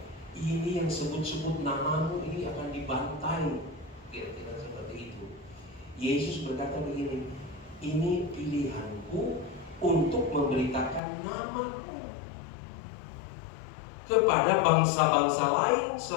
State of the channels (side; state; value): right; drops out; at 11.0 s